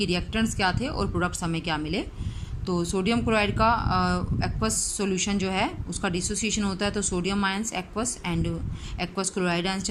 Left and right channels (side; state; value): both; identical; correlation 1.00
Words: रिएक्टेंट्स क्या थे और प्रोडक्ट्स हमें क्या मिले। तो सोडियम क्लोराइड का एक्वस सॉल्यूशन जो है उसका डिसोसिएशन होता है, तो sodium ions aqueous and aqueous chloride ions